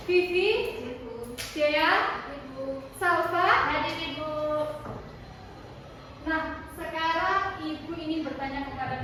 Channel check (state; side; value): identical; both; correlation 1.00